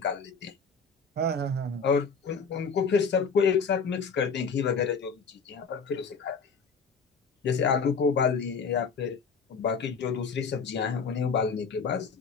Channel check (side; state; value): right; quieter; 5.2 dB